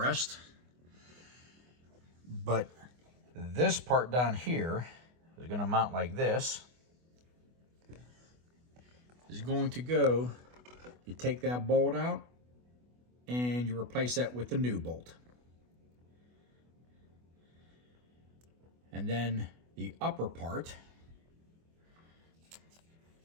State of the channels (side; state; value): left; late; 24 ms